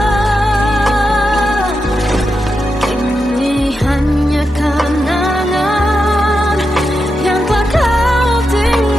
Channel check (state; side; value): normal; both; correlation 0.87